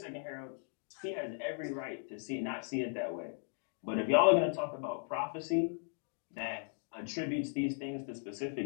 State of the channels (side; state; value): right; silent; 53 dB below the other